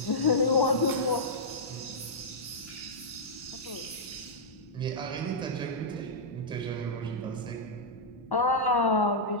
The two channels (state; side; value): normal; both; correlation -0.10